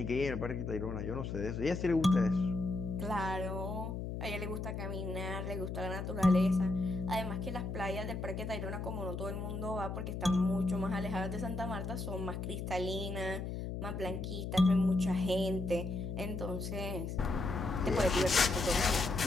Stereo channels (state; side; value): noise; left; hum, 5 dB below the sound